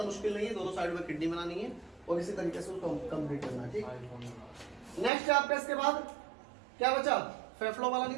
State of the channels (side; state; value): left; drops out; at 5.1 s